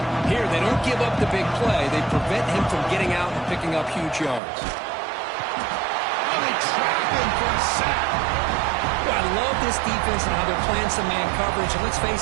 Here, they don't give up the big play. They prevent him from getting out and picking up huge yards. And they trap him for a sack. Well, I love this defense and how they're playing some man coverage. And let's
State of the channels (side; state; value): left; drops out; at 4.4 s